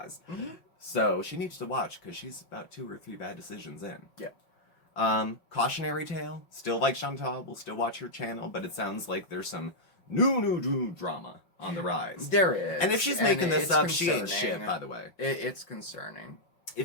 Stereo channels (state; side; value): late; right; 5.6 ms